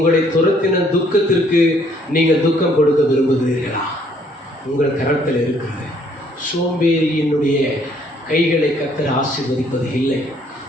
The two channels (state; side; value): normal; both; correlation 0.64